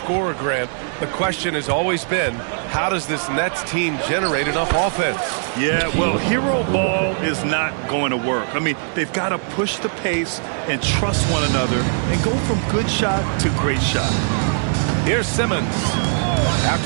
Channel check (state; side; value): silent; left; digital silence